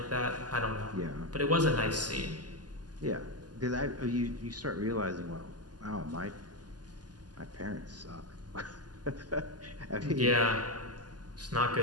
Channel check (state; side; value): late; left; 0.70 ms